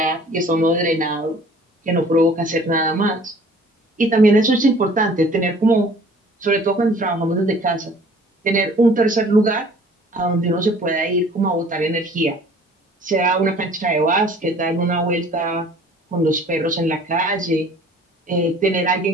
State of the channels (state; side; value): normal; both; correlation 0.51